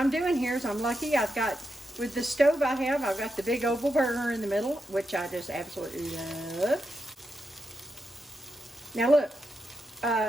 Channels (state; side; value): normal; both; correlation 0.86